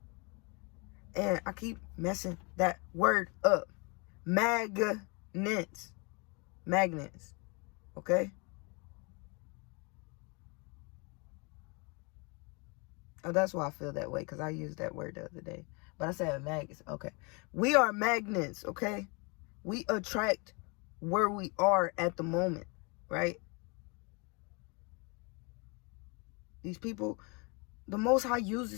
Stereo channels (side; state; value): right; quieter; 31.0 dB